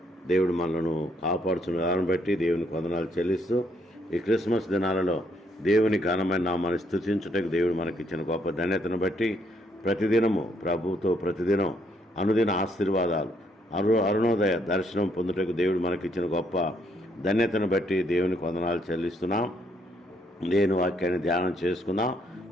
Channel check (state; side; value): normal; both; correlation 0.71